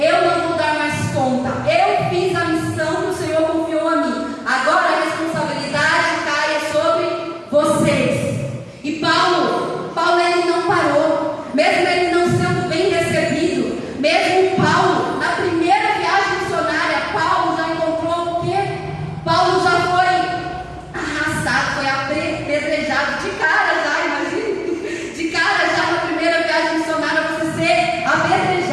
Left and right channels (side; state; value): both; identical; correlation 1.00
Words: não vou dar mais conta. Eu fiz a missão que o Senhor confiou a mim. Agora a responsabilidade cai sobre vocês. E Paulo ele não parou. Mesmo ele não sendo bem recebido, mesmo Paulo, na primeira viagem missionária, Paulo já encontrou o quê? Paulo já foi arrastado, foi apedrejado de cara já, imagina. De cara já na primeira viagem missionária, você ser